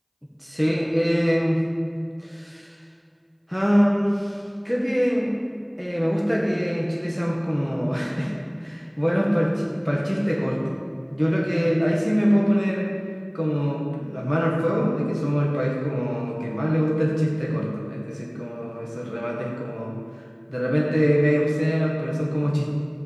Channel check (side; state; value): both; identical; correlation 1.00